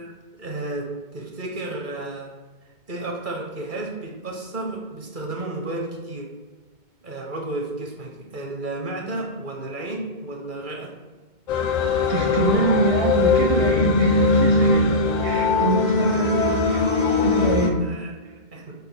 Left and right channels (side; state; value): left; late; 2.2 ms